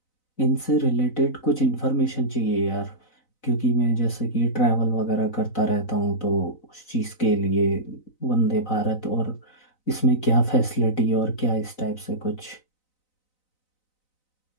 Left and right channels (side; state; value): right; late; 4.0 ms